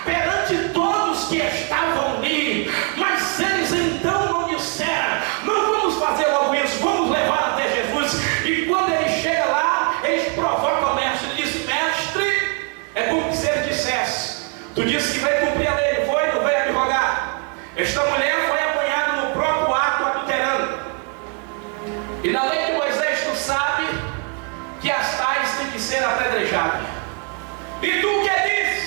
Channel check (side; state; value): left; quieter; 39.4 dB